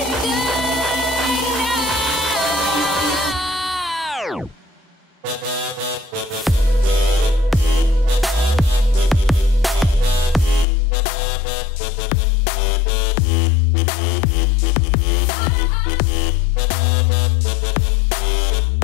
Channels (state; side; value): drops out; right; at 10.7 s